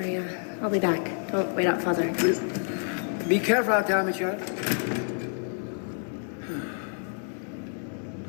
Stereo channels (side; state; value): right; silent; 55 dB below the other